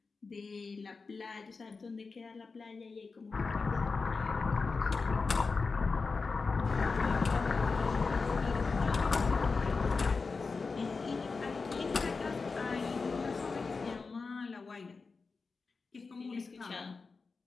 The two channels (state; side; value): quieter; right; 4.4 dB